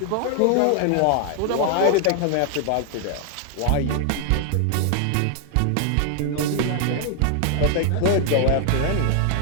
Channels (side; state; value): both; different; correlation 0.00